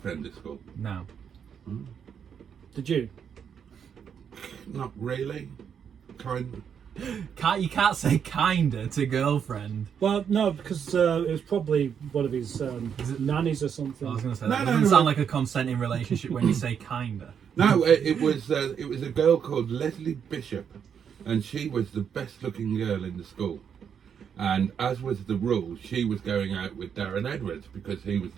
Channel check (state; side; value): quieter; left; 7.7 dB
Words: at school? No. Did you? Not really. Kind. You can't say kinda to girlfriend. Well, no, because it was probably one of his nannies or something. I was going to say No, that no, doesn't no. sound like a consenting relationship when you say kinda. No, it was a girl called Leslie Bishop, and she was the best looking girl in the school. And as was the rule, she was going out with Darren Edwards because he was